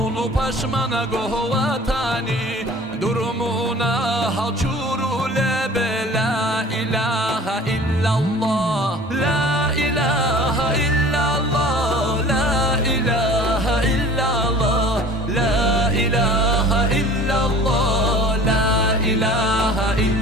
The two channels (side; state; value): both; normal; correlation 0.44